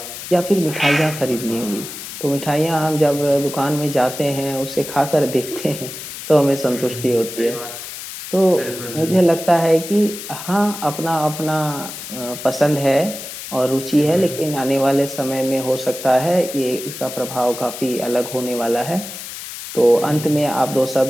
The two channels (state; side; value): noise; left; hiss, 10 dB below the sound